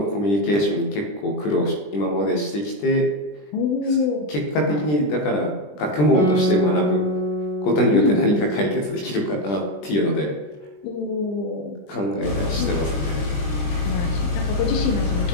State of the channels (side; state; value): right; late; 20 ms